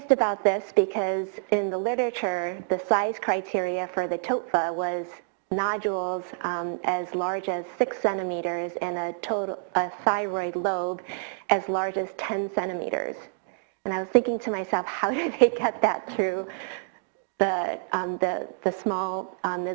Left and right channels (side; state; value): left; silent; digital silence